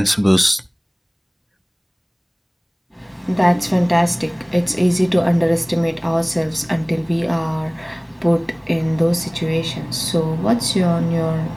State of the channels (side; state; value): both; identical; correlation 1.00